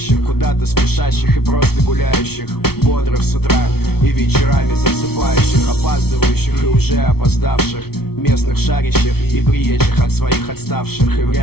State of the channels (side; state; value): right; late; 0.95 ms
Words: куда-то спешащих и просто гуляющих, бодрых с утра и вечерами засыпающих, опаздывающих и уже опоздавших, местных шарящих и приезжих от своих отставших. И